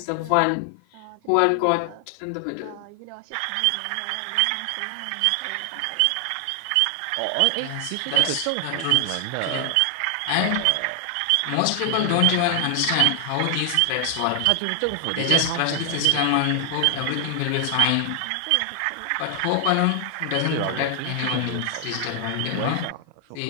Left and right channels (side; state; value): both; different; correlation 0.00